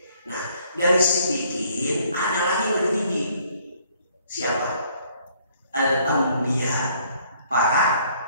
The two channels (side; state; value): both; inverted; correlation -0.63